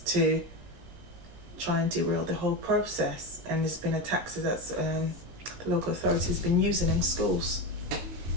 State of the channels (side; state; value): left; late; 19 ms